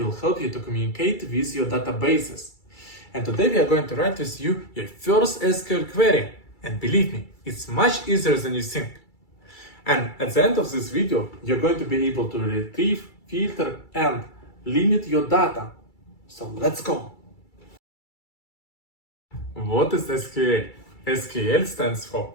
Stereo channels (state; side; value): late; right; 2.3 ms